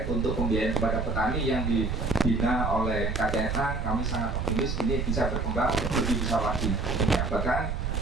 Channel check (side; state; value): right; noise; rumble, 2 dB below the sound